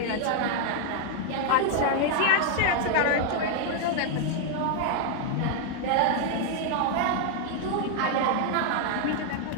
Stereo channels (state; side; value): different; both; correlation 0.00